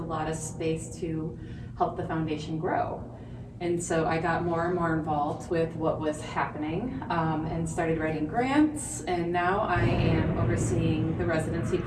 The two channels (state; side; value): identical; both; correlation 1.00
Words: lot of space to help the foundation grow. And so I got more and more involved with what was happening and started writing grants. And now I am overseeing the residency